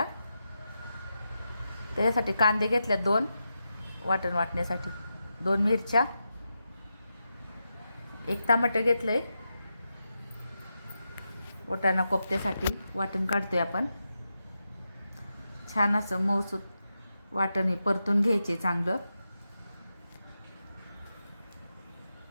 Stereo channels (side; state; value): both; inverted; correlation -0.88